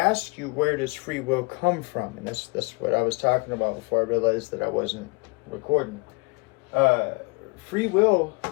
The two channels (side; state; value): right; quieter; 28.8 dB